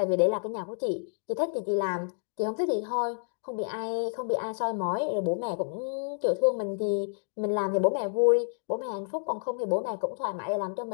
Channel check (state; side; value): silent; right; 58 dB below the other